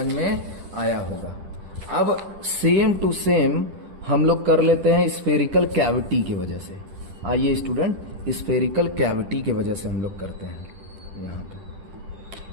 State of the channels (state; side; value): late; left; 10 ms